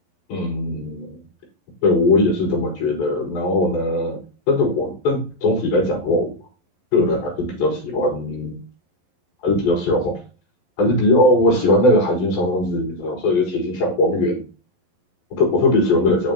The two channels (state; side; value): late; right; 11 ms